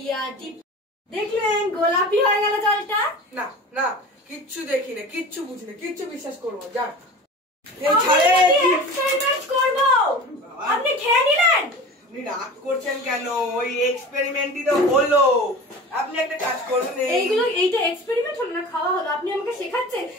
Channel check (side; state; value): both; normal; correlation 0.36